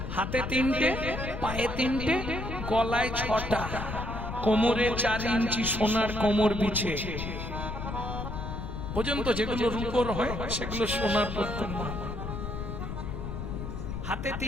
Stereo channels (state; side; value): noise; left; rumble, 6 dB below the sound